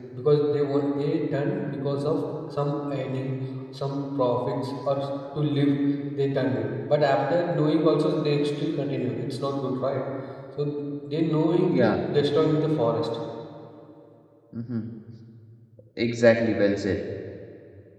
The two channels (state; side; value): identical; both; correlation 1.00